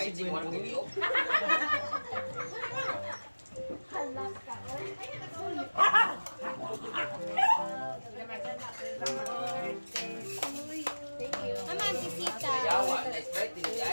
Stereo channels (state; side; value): inverted; both; correlation -1.00